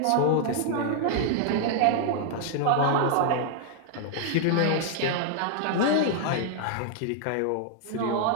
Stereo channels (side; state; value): both; different; correlation -0.01